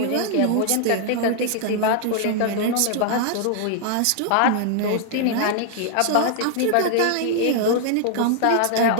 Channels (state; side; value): different; both; correlation -0.01